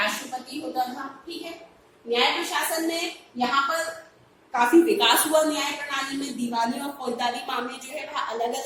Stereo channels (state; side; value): identical; both; correlation 1.00